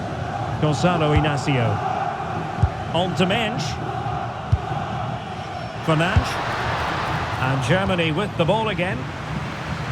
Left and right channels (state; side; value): identical; both; correlation 1.00